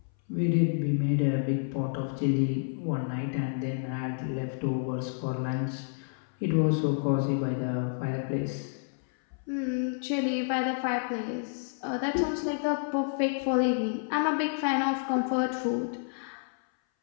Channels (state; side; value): silent; right; 58 dB below the other